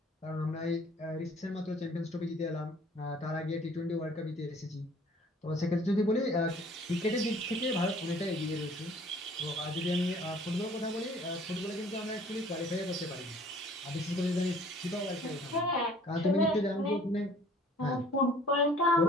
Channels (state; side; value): normal; both; correlation 0.53